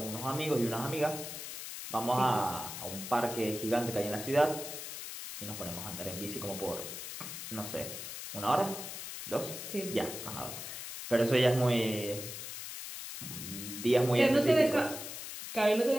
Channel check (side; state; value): left; noise; hiss, 8 dB below the sound